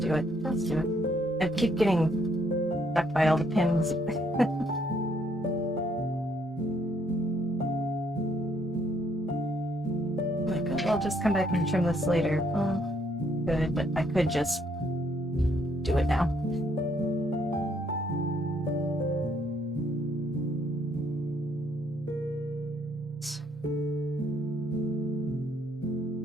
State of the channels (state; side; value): normal; both; correlation 0.69